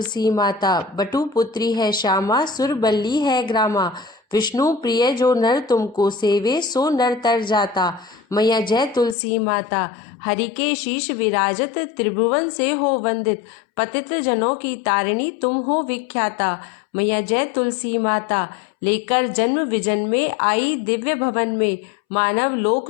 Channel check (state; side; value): drops out; right; at 9.2 s